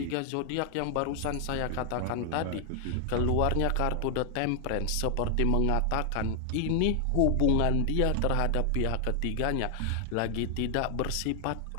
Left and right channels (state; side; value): different; both; correlation 0.00